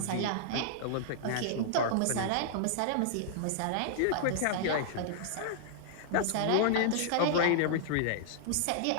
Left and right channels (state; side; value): different; both; correlation -0.01